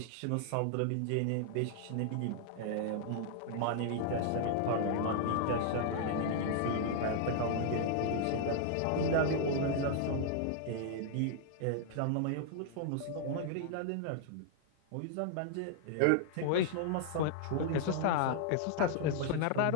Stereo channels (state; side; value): different; both; correlation -0.01